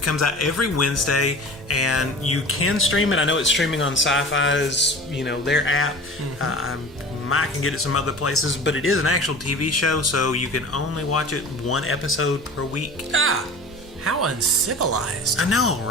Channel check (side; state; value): both; normal; correlation 0.38